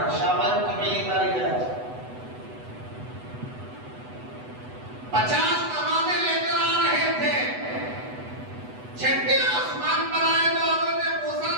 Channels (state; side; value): late; left; 8.0 ms